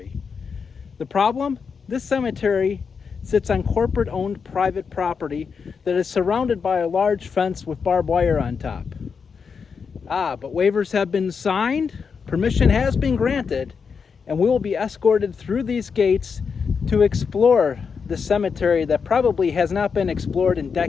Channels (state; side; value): quieter; right; 5.8 dB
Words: The problem? This cemetery sits on corporate-owned private property that is surrounded by a large fence with barbed wire on top. But waivers have been signed, permission has been granted, and we will be escorted through these gates to explore the cemetery that probably has not been explored in